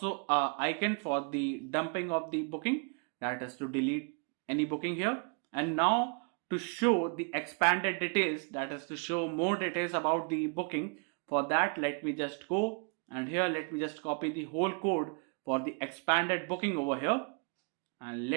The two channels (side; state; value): left; quieter; 36.6 dB